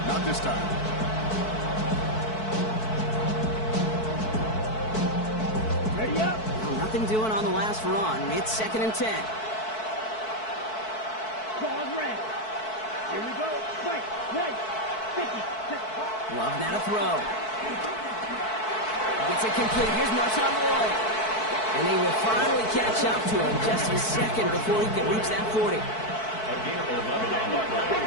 not this time. Ready up. Nothing doing on the last run. It's 2nd and 10. Ball red. Here we go. Right. 50. Love now to throw. Gets it complete. Here's Marshawn Lloyd. And they will finally catch up to him just a second before he can reach that 40. A gain of 11 on the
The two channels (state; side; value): late; right; 4.6 ms